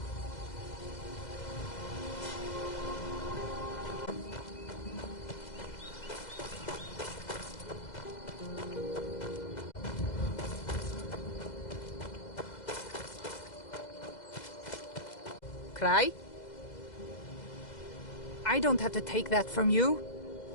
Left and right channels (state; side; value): late; right; 2.0 ms